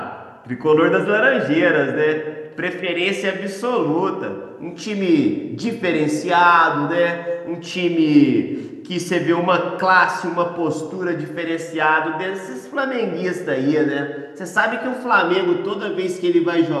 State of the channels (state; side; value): identical; both; correlation 1.00